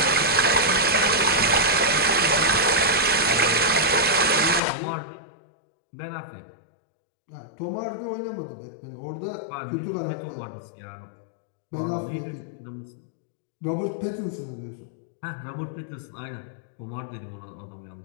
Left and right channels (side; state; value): right; drops out; at 4.6 s